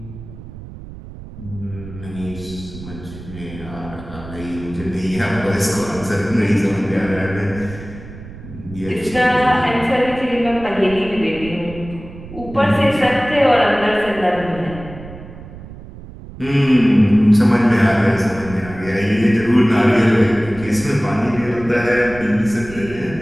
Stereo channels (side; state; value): right; noise; rumble, 15 dB below the sound